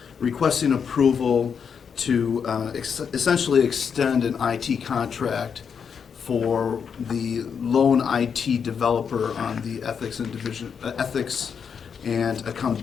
requesting approval to essentially extend an IT contract for the lone IT developer on the Ethics and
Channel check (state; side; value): quieter; right; 6.8 dB